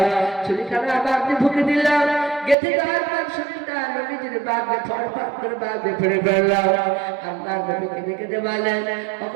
ছুরিখানা বাবজি ঢুকে দিলাম। গেঁথে দেওয়ার পর শরীরটা নবীজির বাবজি ফরফর করে বাবজি ফেলে ফেললাম। আল্লাহ নবীকে দেখে দে বলেন,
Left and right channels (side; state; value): left; drops out; at 2.6 s